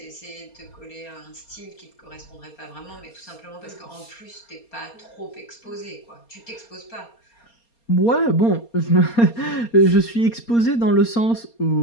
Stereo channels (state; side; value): late; right; 4.3 ms